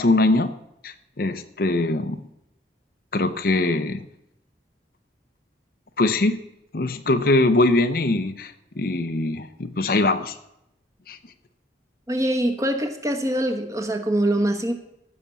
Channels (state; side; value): normal; both; correlation 0.56